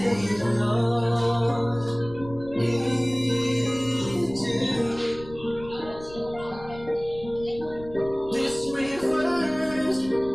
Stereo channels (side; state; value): left; noise; rumble, 17 dB below the sound